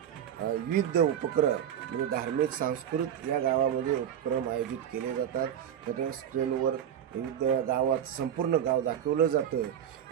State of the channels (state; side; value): quieter; left; 9.5 dB